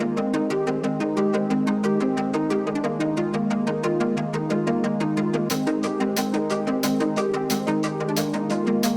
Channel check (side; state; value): both; identical; correlation 1.00